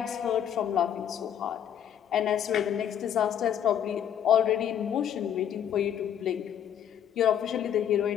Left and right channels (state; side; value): quieter; right; 9.5 dB